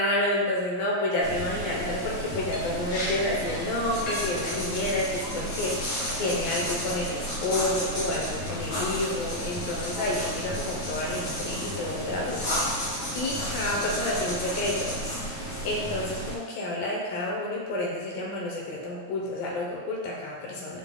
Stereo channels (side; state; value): right; late; 9.0 ms